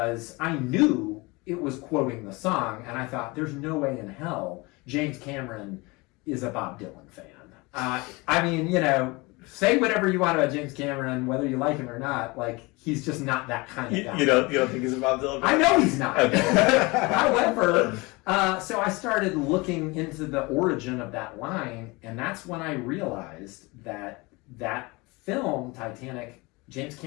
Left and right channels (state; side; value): quieter; right; 24.9 dB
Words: I knew it was quoting the song, and I thought, there's no way in hell James Cameron is a Bob Dylan fan. Say whatever you want about James Cameron, whether you like him or not. He's just not that kind of guy. You don't think he's a Bob Dylan fan? I know he's not. Okay. However, so I started looking into the origin of that line, and that's when I realized that film, Titanic, James